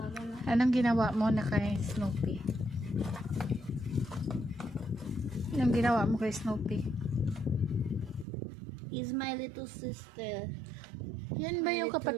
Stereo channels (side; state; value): left; drops out; at 8.2 s